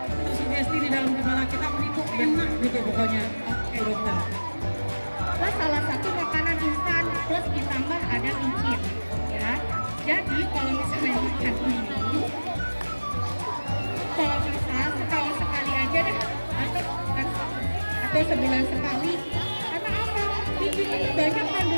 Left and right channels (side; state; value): both; inverted; correlation -1.00